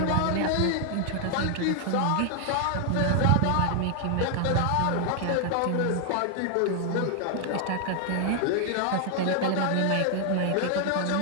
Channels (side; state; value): both; different; correlation 0.00